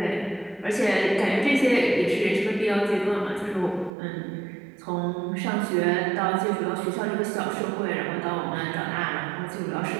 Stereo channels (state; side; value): drops out; left; at 3.9 s